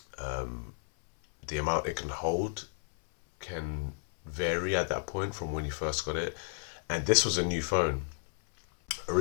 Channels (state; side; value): silent; right; 56 dB below the other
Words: the amount it can hold can vary at that point from when you first got it. And this was a new phone.